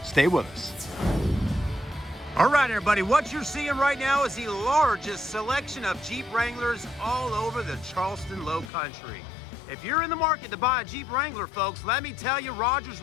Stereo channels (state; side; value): drops out; right; at 8.7 s